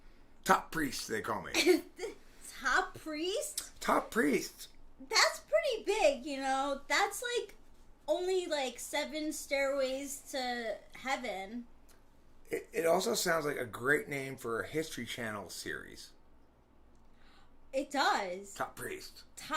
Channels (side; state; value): both; identical; correlation 1.00